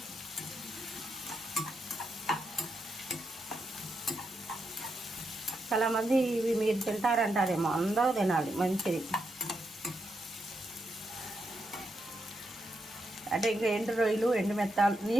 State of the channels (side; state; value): both; normal; correlation 0.83